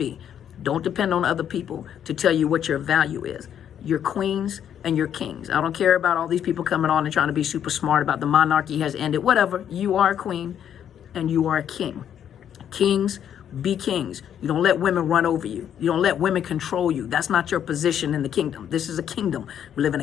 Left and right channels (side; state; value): right; quieter; 9.4 dB